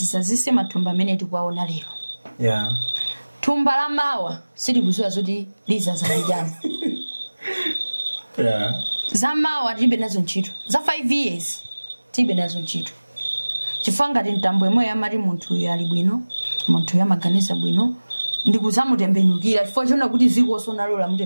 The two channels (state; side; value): inverted; both; correlation -1.00